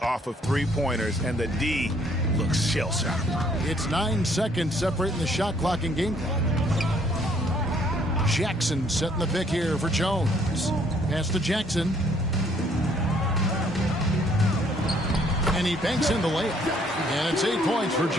of three-pointers, and the D looks shell-shocked. It's 9 seconds separating the shot clock and game clock. Jackson setting the pick here for Jones. Pass to Jackson. And he banks in the layup. And it's 8 points for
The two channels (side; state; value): both; normal; correlation 0.64